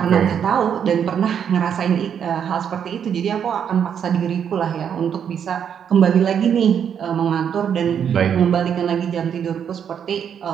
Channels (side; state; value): left; quieter; 8.2 dB